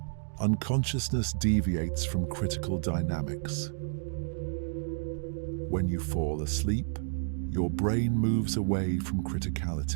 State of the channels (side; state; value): left; silent; digital silence